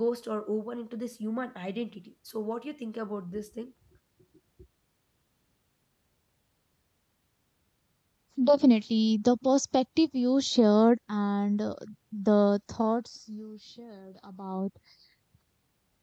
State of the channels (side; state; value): both; identical; correlation 1.00